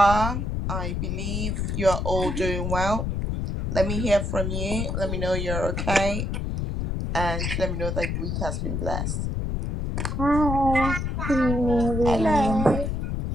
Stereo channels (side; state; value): left; noise; rumble, 1 dB below the sound